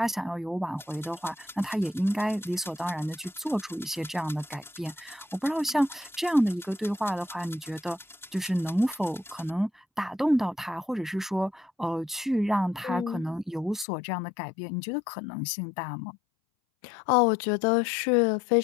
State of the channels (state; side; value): drops out; right; at 13.9 s